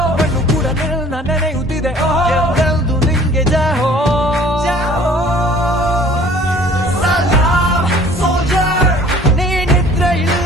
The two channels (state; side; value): normal; both; correlation 0.52